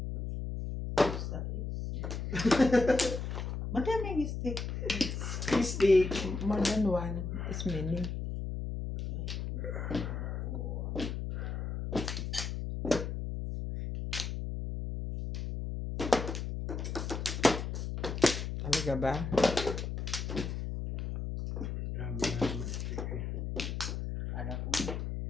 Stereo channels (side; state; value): left; noise; hum, 4 dB below the sound